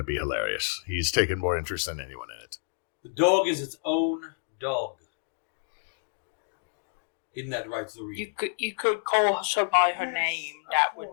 be hilarious. He's taken more interest than anyone in it. The dog is its own dog. Isn't that right, Zuri? You could call her by her name. Of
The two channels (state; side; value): silent; right; 59 dB below the other